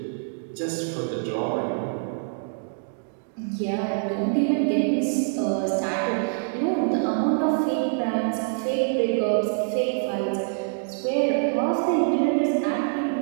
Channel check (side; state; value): left; silent; digital silence